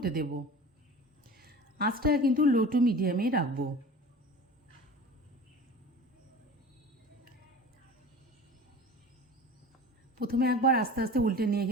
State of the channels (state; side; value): normal; both; correlation 0.38